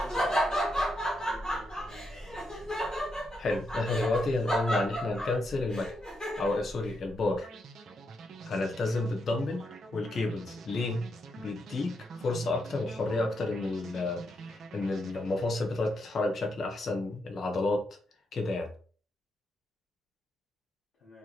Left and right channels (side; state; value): both; normal; correlation 0.82